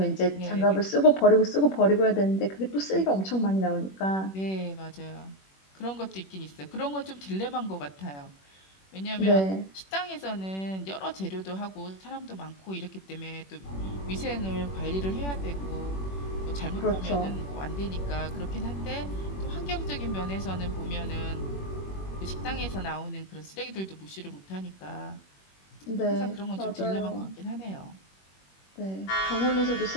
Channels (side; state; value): right; late; 21 ms